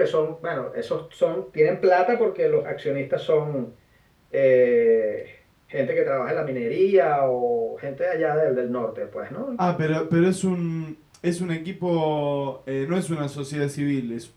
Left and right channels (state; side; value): identical; both; correlation 1.00